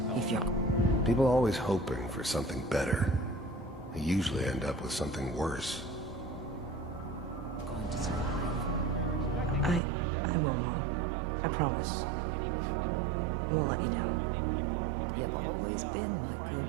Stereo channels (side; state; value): left; drops out; at 9.8 s